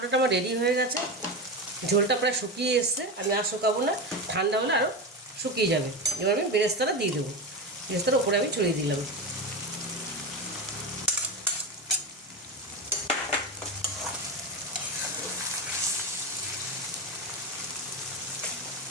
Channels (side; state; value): both; normal; correlation 0.20